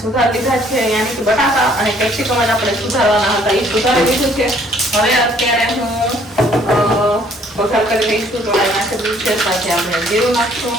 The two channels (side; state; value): both; normal; correlation 0.61